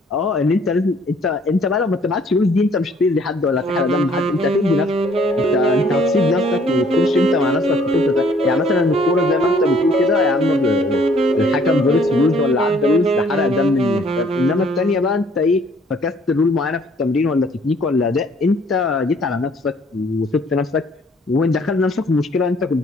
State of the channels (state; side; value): normal; both; correlation 0.60